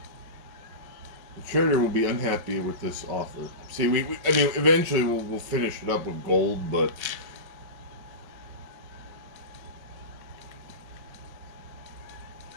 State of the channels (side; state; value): left; late; 5.4 ms